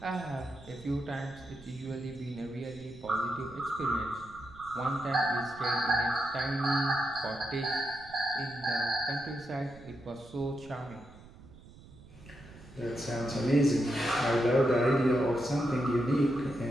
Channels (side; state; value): right; noise; rumble, 20 dB below the sound